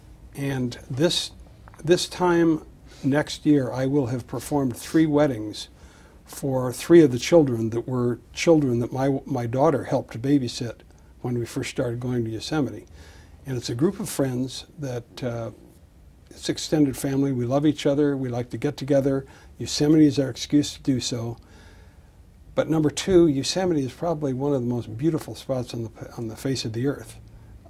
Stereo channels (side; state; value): both; identical; correlation 1.00